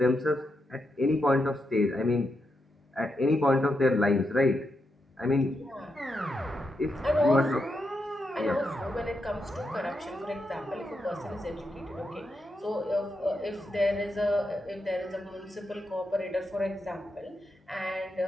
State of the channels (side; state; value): both; normal; correlation 0.84